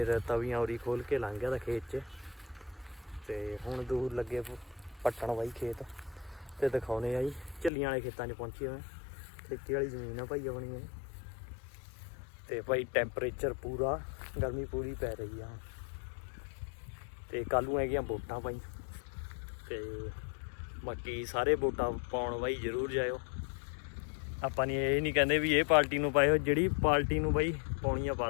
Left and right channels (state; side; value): drops out; right; at 7.7 s